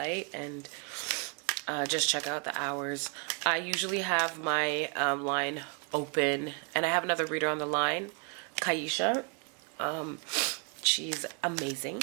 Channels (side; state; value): left; quieter; 38.1 dB